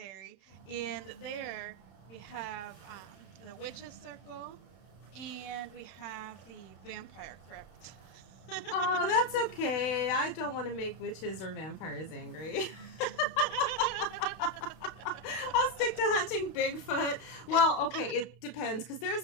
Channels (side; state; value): right; late; 31 ms